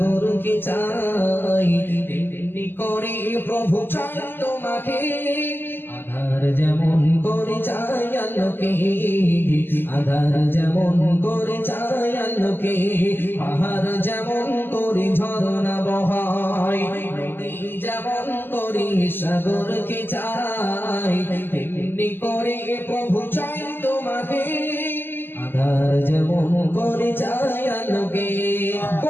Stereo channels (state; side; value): late; right; 0.098 ms